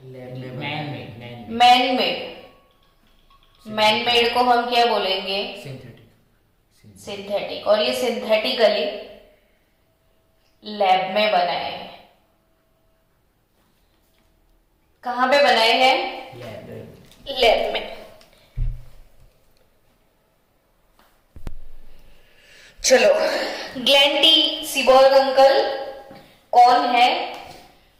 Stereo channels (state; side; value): identical; both; correlation 1.00